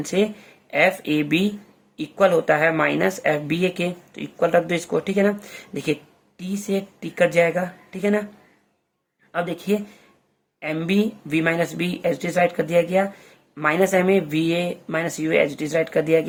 से एफ ए बी इक्वल होता है माइनस एफ बी ए के, तो इक्वल रख दो इसको, ठीक है ना। देखिए टी से टी कट जाएगा, ठीक है ना। अब देखिए M B V minus B H D write कर दिया गया, minus M A V A minus U H D write कर दिया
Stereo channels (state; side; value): identical; both; correlation 1.00